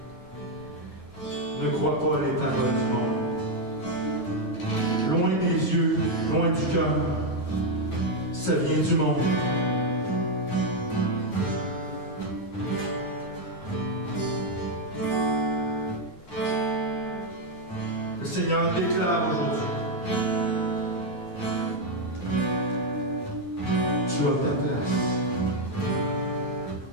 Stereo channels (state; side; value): late; right; 9.3 ms